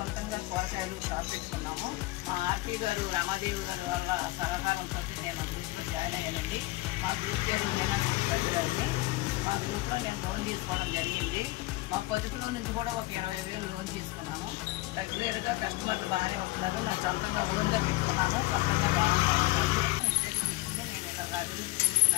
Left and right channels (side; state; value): right; quieter; 20.9 dB